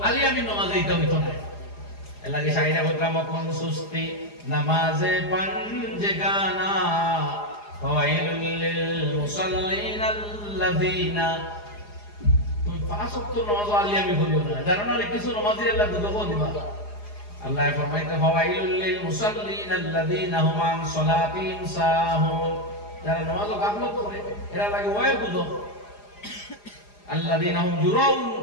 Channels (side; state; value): right; late; 4.8 ms